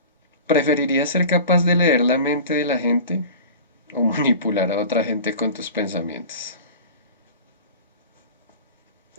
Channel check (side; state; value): both; inverted; correlation -0.37